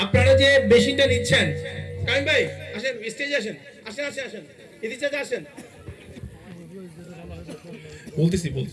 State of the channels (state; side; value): identical; both; correlation 1.00